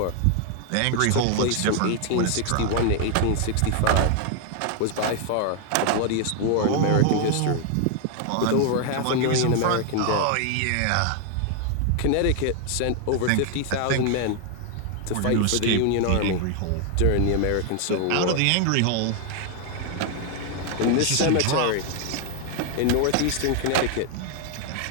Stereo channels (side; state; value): both; different; correlation 0.00